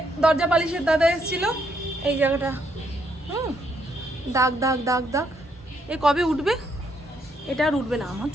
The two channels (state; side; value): normal; both; correlation 0.74